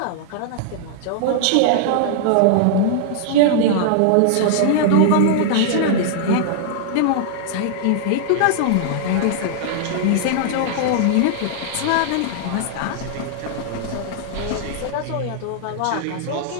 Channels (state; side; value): different; both; correlation -0.01